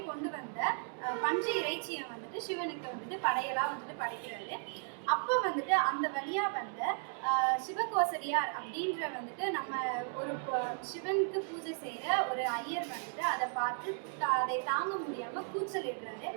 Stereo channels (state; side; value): silent; left; 54 dB below the other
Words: கொண்டு வந்த பஞ்சு இறைச்சியை வந்துட்டு சிவனுக்கு வந்துட்டு படையலா வந்துட்டு படைக்கிறாரு. அப்போ வந்துட்டு அந்த வழியா வந்த சிவகோசரியார் அப்படின்ற வந்துட்டு நம்ம ஒரு சிவனுக்கு பூஜை செய்யற ஒரு ஐயர் வந்துட்டு அதை பார்த்து அதை தாங்க முடியாம கூச்சலிடுறாரு.